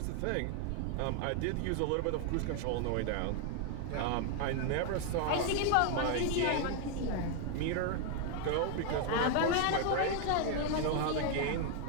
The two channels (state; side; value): different; both; correlation 0.00